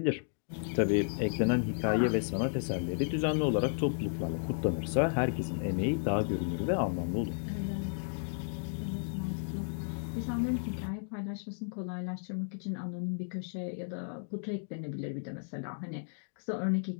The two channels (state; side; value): silent; right; digital silence